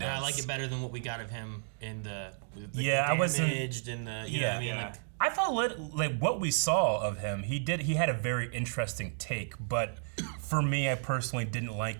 I does. like it better than what we got of him in the I wasn't. damaged and the you know what I mean, yeah. like I thought like what we saw of him, he had a very interesting take, but for me, I personally didn't like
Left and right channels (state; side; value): silent; left; digital silence